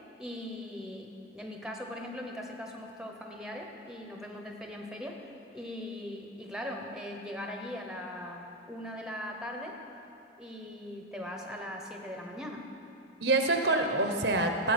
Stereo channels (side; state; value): both; normal; correlation 0.04